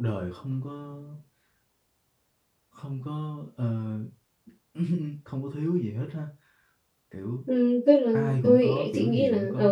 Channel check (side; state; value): both; identical; correlation 1.00